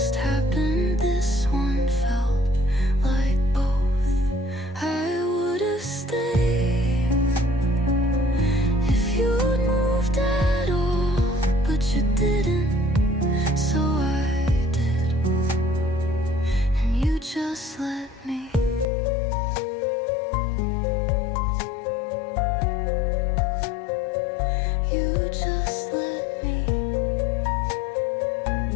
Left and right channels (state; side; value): drops out; right; at 18.9 s